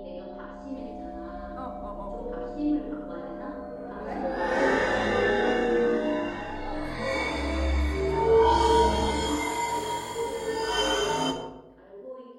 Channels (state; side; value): identical; both; correlation 1.00